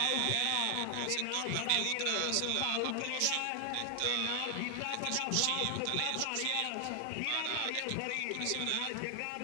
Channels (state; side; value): different; both; correlation 0.00